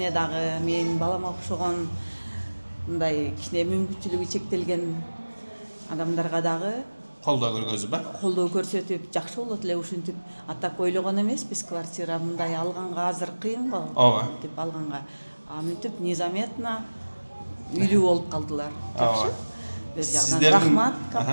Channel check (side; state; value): both; inverted; correlation -1.00